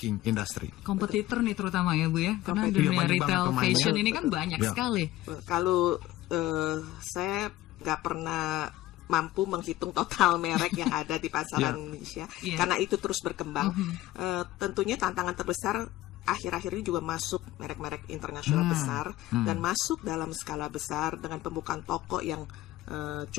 industry. Kompetitor nih terutama ya Bu ya, karena dunia banyak retail banget pemainnya. fashion ini kan banyak sekali. Kalau saya nggak pernah mampu menghitung total merek yang ada di pasaran Indonesia, karena itu terus berkembang. Tentunya tantangan terbesar akhir-akhir ini juga masuk merek-merek internasional besar dan masuk dalam skala besar dengan pembukaan toko yang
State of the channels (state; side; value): quieter; right; 15.9 dB